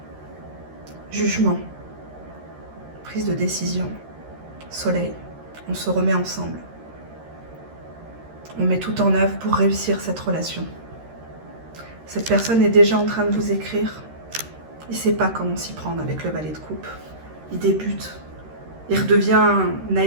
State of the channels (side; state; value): left; late; 13 ms